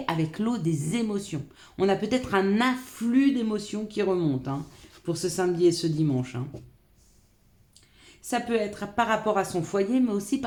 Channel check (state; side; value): identical; both; correlation 1.00